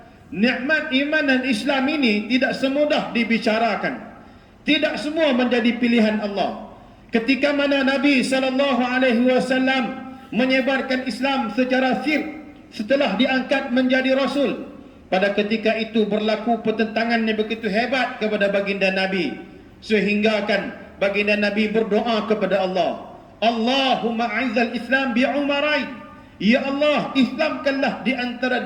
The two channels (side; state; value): both; identical; correlation 1.00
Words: nikmat iman dan Islam ini tidak semudah dibicarakan. Tidak semua menjadi pilihan Allah. Ketika mana Nabi SAW menyebarkan Islam secara sir setelah diangkat menjadi Rasul, pada ketika itu berlaku pertentangan yang begitu hebat kepada baginda Nabi, sehinggakan baginda Nabi berdoa kepada Allah, Allahumma a'izzal Islam bi Umarain, ya Allah, Islamkanlah di antara